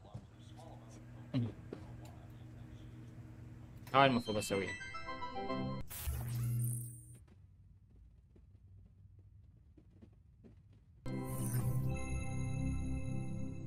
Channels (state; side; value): identical; both; correlation 1.00